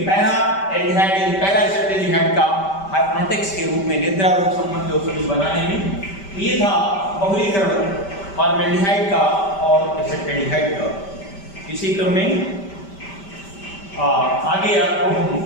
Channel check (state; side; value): late; right; 5.1 ms